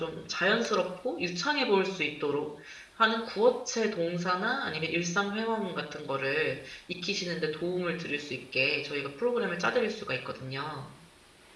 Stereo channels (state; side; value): identical; both; correlation 1.00